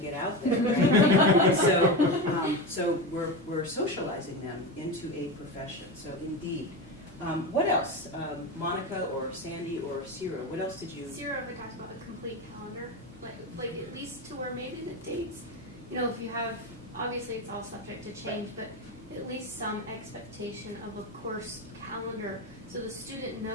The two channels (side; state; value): both; normal; correlation 0.19